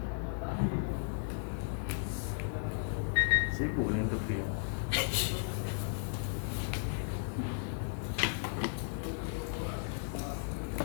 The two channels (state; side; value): silent; right; digital silence